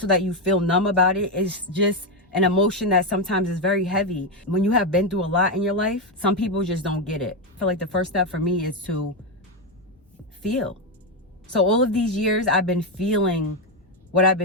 that you feel numb about it. It's just an emotion that sometimes is very heavy. When you have been through a lot in your life, some people just don't get it. I feel like the first step for me is to feel. So all of these years, I've been feeling what I've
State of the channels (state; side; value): normal; both; correlation 0.07